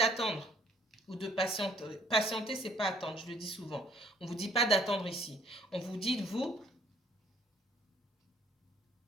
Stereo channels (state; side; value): normal; both; correlation 0.61